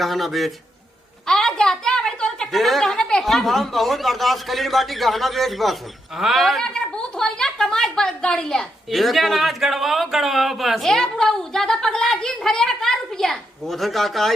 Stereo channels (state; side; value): normal; both; correlation 0.81